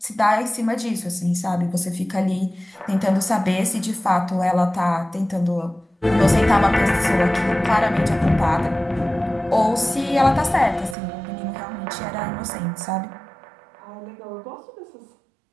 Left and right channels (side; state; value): left; drops out; at 11.0 s